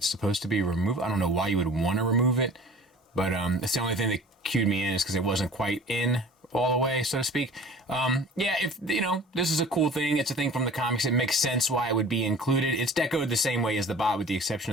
supposed to be removed. I don't know why you would wanna remove it, but it's the only thing that cued me in is because it wasn't quite in all the way, so to speak. Yeah, if, you know, this is a cool thing. It's a thing from the comics. It makes sense why it would be included. It's decoed the same way as the bot with the exception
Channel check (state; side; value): normal; both; correlation 0.44